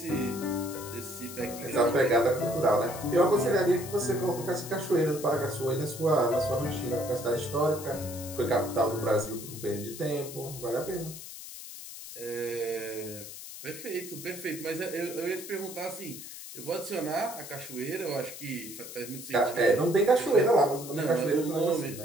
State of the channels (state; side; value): noise; left; hiss, 12 dB below the sound